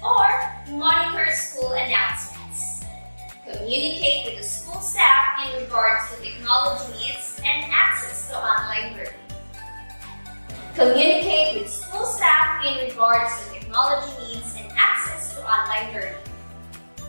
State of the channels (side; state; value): both; inverted; correlation -1.00